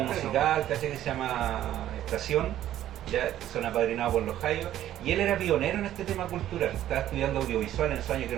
musical que se llama Estación, ya son apadrinados por los Jaios, y él era pionero en este tema cultural. Estaba estudiando audiovisual en esos años, que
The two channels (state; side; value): quieter; left; 12.4 dB